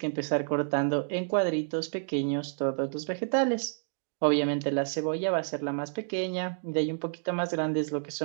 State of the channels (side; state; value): left; silent; digital silence